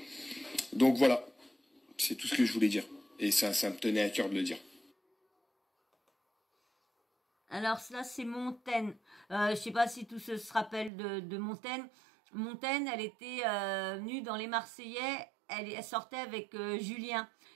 Donc voilà, c'est tout ce que je voulais dire, et ça me tenait à cœur de le dire. Alors là, c'est Montaigne. Je sais pas si tous se rappellent de Montaigne. Montaigne, elle était venue dans les Marseillais, elle sortait avec Julien.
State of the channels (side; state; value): left; drops out; at 10.9 s